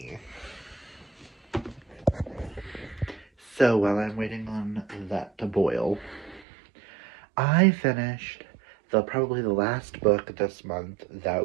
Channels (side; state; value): left; drops out; at 6.5 s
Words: So while I'm waiting on that to boil, I finished probably the last book this month